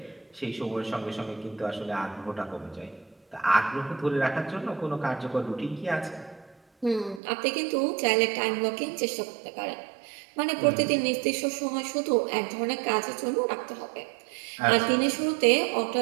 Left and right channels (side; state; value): left; drops out; at 7.2 s